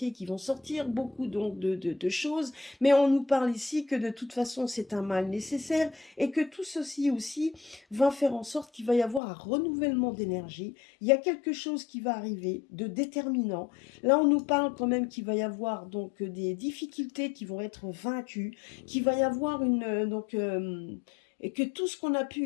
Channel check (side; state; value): right; drops out; at 9.2 s